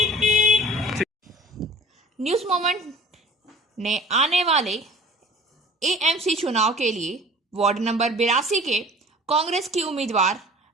न्यूज़ मोमेंट ने आने वाले एएमसी चुनाव के लिए वार्ड नंबर 82 के कांग्रेस की उम्मीदवार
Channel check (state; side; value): normal; both; correlation 0.46